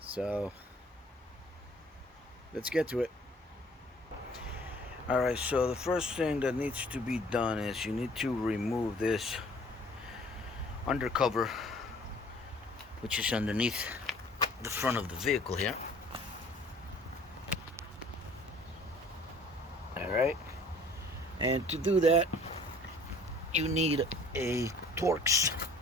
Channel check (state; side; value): normal; both; correlation 0.53